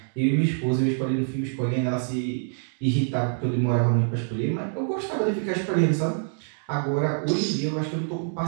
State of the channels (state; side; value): silent; left; digital silence